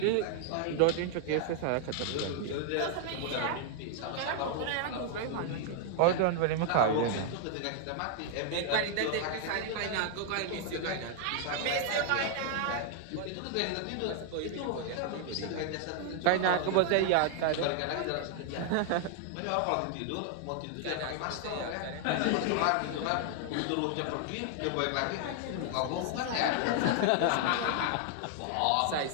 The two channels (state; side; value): different; both; correlation 0.00